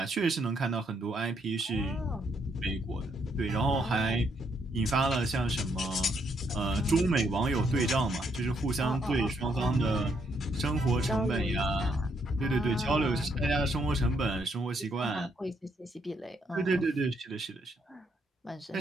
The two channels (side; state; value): both; normal; correlation 0.74